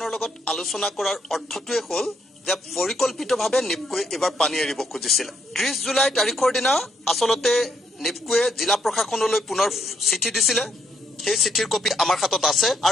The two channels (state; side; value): normal; both; correlation 0.74